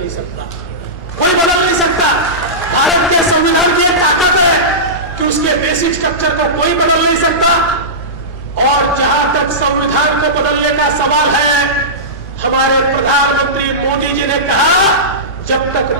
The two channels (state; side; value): normal; both; correlation -0.17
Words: सकता, कोई बदल नहीं सकता। भारत के संविधान की एक ताकत है कि उसके बेसिक स्ट्रक्चर को कोई बदल नहीं सकता। और जहां तक संविधान को बदलने का सवाल है, हमारे प्रधानमंत्री मोदी जी ने कहा जब तक